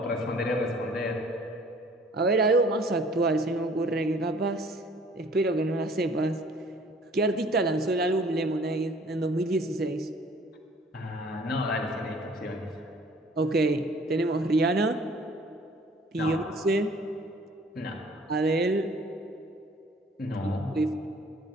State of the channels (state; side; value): normal; both; correlation 0.54